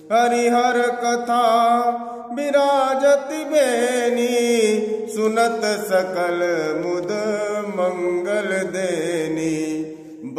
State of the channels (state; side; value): identical; both; correlation 1.00